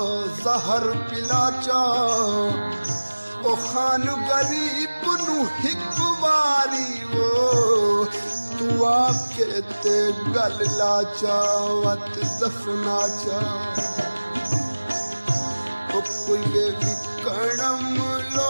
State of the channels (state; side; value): inverted; both; correlation -1.00